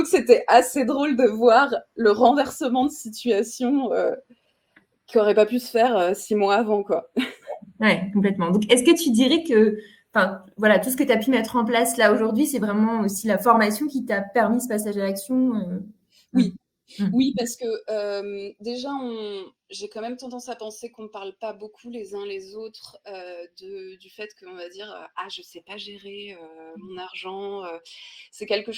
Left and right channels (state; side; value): identical; both; correlation 1.00